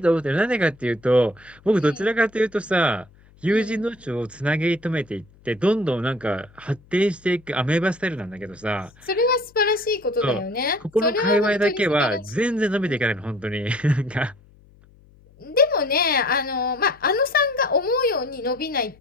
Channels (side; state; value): left; noise; hum, 28 dB below the sound